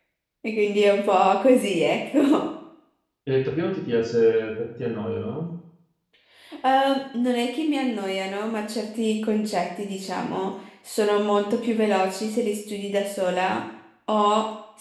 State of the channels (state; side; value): identical; both; correlation 1.00